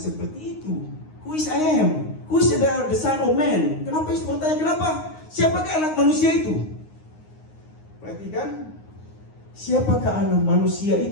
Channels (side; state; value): right; late; 9.6 ms